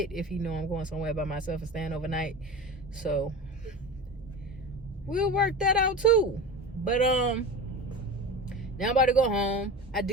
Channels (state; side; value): normal; both; correlation 0.30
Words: if he know I'm going somewhere by myself and staying overnight. So we'll work that out too. But now I'm about to go home. I